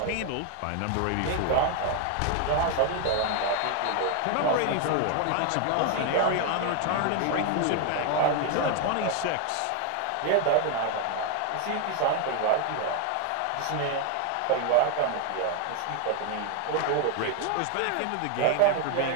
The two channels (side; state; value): both; different; correlation 0.01